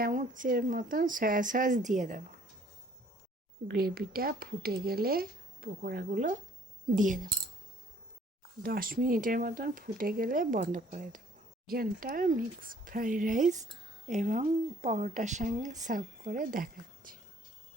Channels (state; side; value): normal; both; correlation 0.58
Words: মতন সয়া সস দিয়ে দেব। গ্রেভিটা ফুটে গেলে পকোড়াগুলো দিয়ে দেব। 10 মিনিটের মতন ফুটে গেলে বন্ধ করে দেব। চিকেনটা মিক্স ফ্রাইড রাইস এবং পরোটার সঙ্গে সার্ভ করে দেখাচ্ছি।